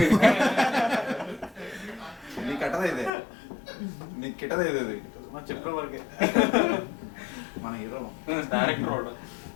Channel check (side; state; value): right; drops out; at 3.1 s